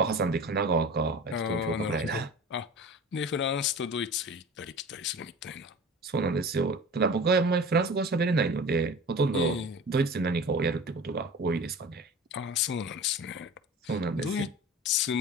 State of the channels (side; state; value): both; normal; correlation 0.37